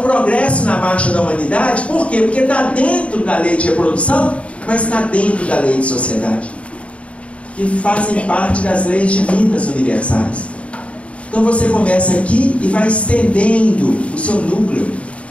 progresso na marcha da humanidade. Por quê? Porque está dentro da lei de reprodução, mas está dentro da lei de sociedade, que fazem parte das leis divinas universais. Então você começa aqui e vai estendendo o seu núcleo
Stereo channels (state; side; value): late; right; 0.063 ms